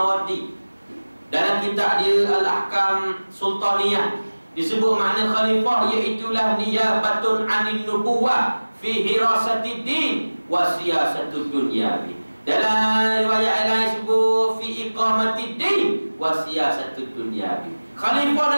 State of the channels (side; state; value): both; inverted; correlation -1.00